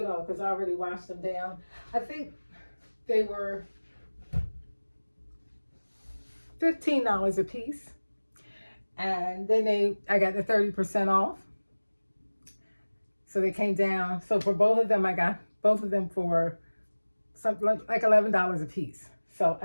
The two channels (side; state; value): both; inverted; correlation -1.00